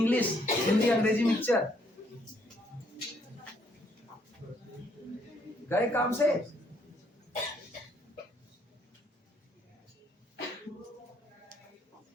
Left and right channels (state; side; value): normal; both; correlation 0.68